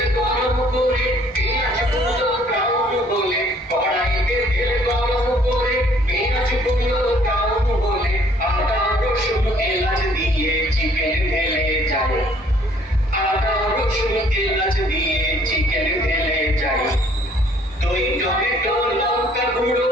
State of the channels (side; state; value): both; normal; correlation 0.60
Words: গরম করে পেঁয়াজ কুচো ব্রাউন বলে কড়াইতে তেল গরম করে একটু লঙ্কা গুঁড়ো